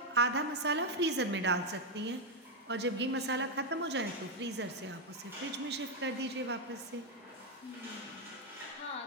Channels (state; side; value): normal; both; correlation 0.02